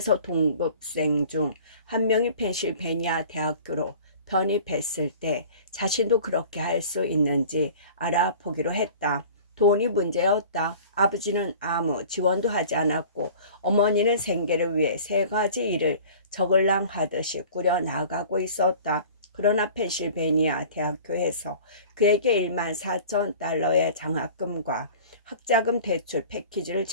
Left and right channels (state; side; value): inverted; both; correlation -0.44